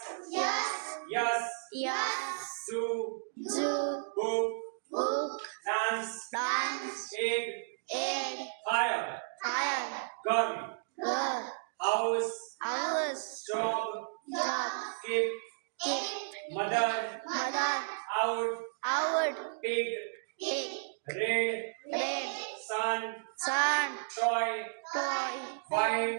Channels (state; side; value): silent; left; digital silence